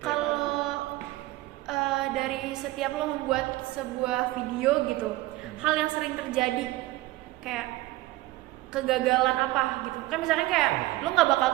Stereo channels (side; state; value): left; quieter; 18.1 dB